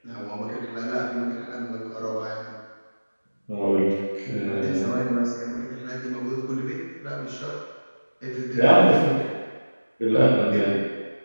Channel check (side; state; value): both; inverted; correlation -1.00